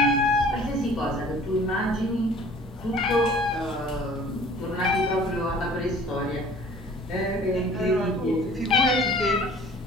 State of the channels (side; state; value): both; normal; correlation 0.50